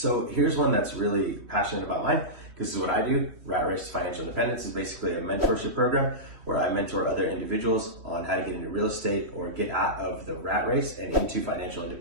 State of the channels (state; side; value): late; left; 3.2 ms